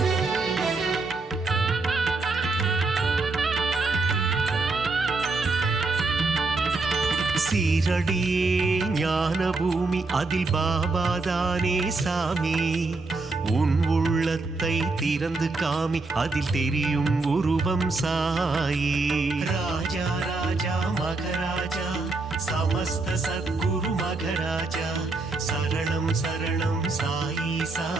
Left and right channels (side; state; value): left; quieter; 3.6 dB